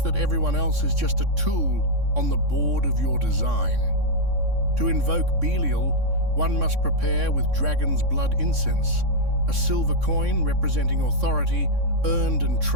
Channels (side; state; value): left; late; 3.6 ms